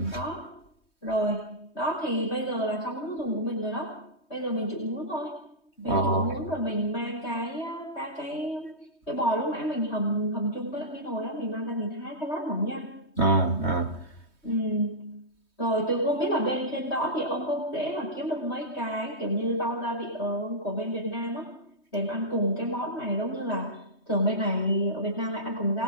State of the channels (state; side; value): late; right; 3.2 ms